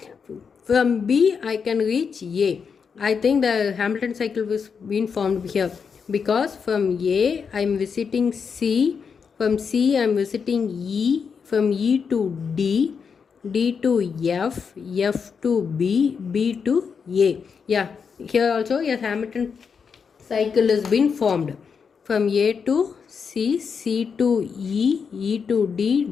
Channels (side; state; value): right; quieter; 6.1 dB